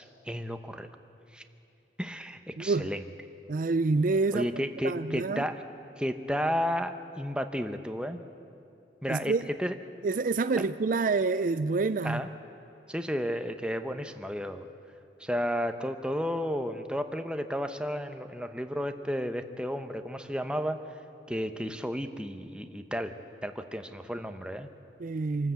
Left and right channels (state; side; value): normal; both; correlation 0.64